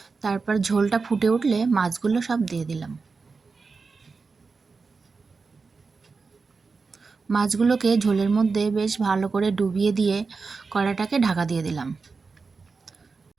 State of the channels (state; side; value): quieter; left; 4.5 dB